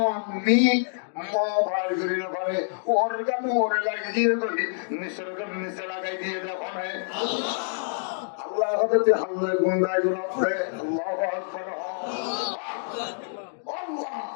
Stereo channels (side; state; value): right; silent; digital silence